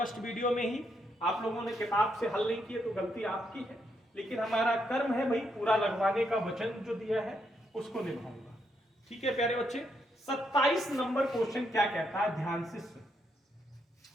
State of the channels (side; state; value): both; normal; correlation 0.77